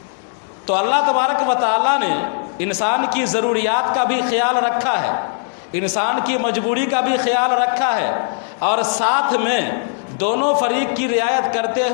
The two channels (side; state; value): right; silent; 67 dB below the other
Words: تو اللہ تبارک و تعالیٰ نے انسان کی ضروریات کا بھی خیال رکھا ہے، انسان کی مجبوری کا بھی خیال رکھا ہے، اور ساتھ میں دونوں فریق کی رعایت کرتے